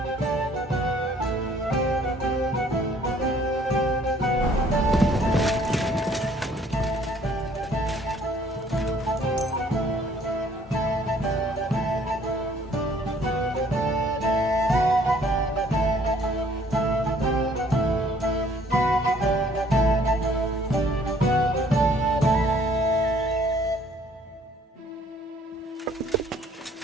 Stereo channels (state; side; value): normal; both; correlation 0.60